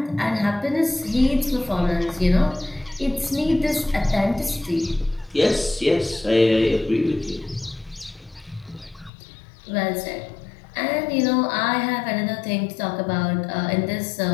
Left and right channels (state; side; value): drops out; right; at 9.1 s